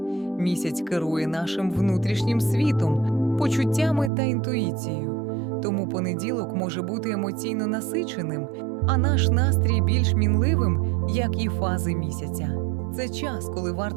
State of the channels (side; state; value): left; drops out; at 4.1 s